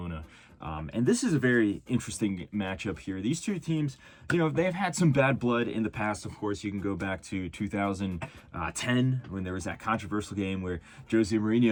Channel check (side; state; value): both; identical; correlation 1.00